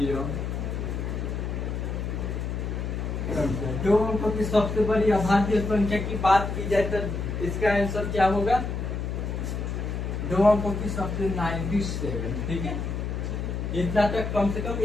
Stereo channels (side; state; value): left; noise; hum, 3 dB below the sound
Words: संख्या। 2 अंकों की सबसे बड़ी अभाज्य संख्या की बात की जाए तो इसका आंसर क्या होगा? 2 अंकों की सबसे 97। ठीक है। इतना तक कम से कम